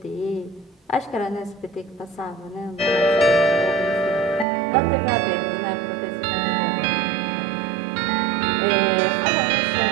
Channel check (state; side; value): drops out; left; at 4.5 s